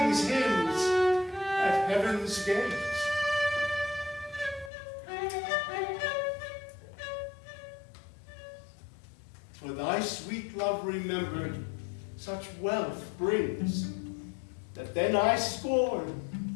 hymns at heaven's gates. For thy sweet love remembered such wealth brings, that then I scorn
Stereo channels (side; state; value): right; drops out; at 4.7 s